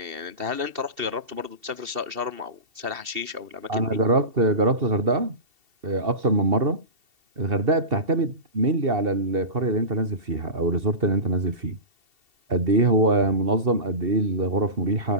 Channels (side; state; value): left; late; 2.7 ms